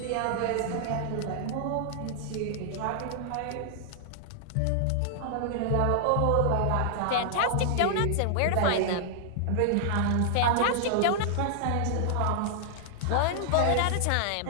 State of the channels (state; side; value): different; both; correlation -0.01